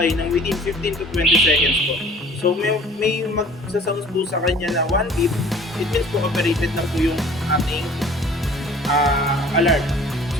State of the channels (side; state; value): both; normal; correlation 0.50